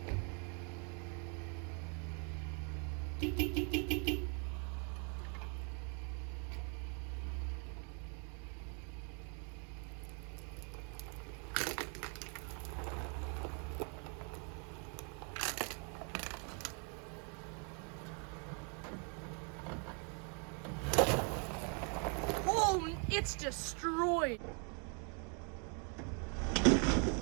Oh, it's destroyed.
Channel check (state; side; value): quieter; left; 38.3 dB